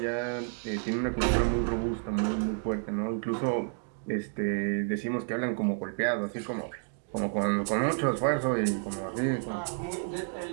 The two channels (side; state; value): left; silent; 58 dB below the other